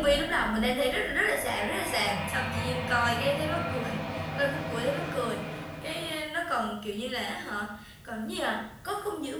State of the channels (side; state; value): both; identical; correlation 1.00